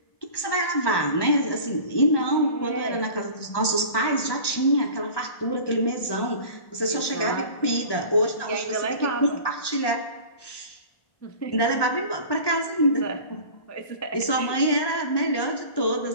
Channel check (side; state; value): right; late; 1.2 ms